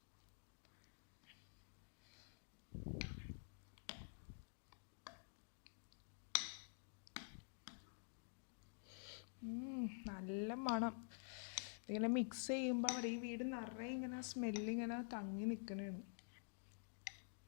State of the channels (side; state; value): right; silent; digital silence